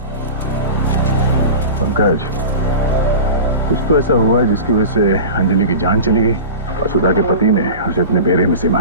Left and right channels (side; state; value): both; inverted; correlation -0.32